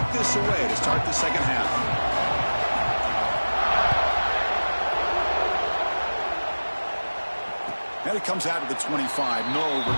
this away to start the second half. And it comes out of the 25. No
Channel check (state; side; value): inverted; both; correlation -1.00